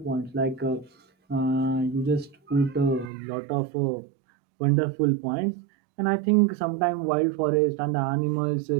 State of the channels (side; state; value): left; drops out; at 3.1 s